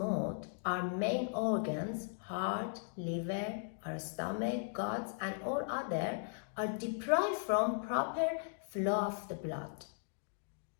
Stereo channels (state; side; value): silent; right; digital silence